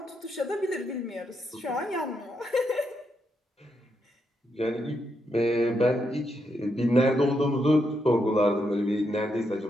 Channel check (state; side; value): normal; both; correlation 0.81